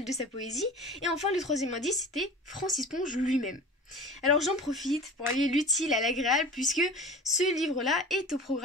de sa poésie. Et enfin, le troisième indice, c'était Francis Ponge lui-même. Alors j'en profite pour allier l'utile à l'agréable puisque ce livre-là est au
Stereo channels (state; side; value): normal; both; correlation 0.38